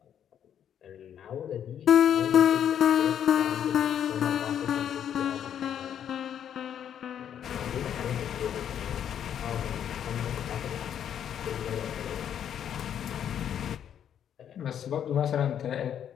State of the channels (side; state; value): right; quieter; 9.4 dB